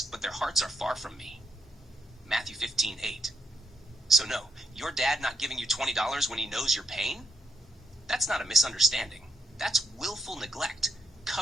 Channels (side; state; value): both; normal; correlation 0.78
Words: but their hearts are far from me. Matthew 15:8. So no, your dad not giving you $20 when he knows your pain? That's not a misunderstanding. That's willful neglect,